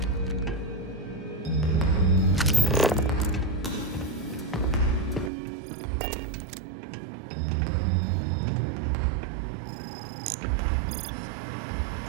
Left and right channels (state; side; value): drops out; left; at 5.3 s